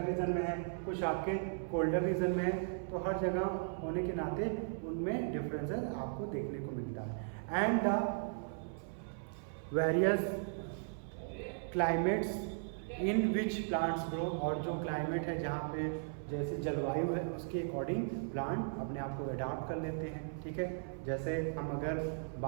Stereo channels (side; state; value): left; silent; 53 dB below the other